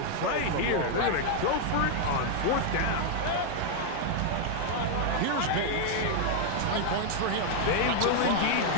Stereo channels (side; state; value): both; different; correlation 0.00